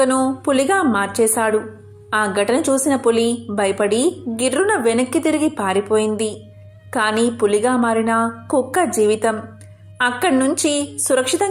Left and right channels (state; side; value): identical; both; correlation 1.00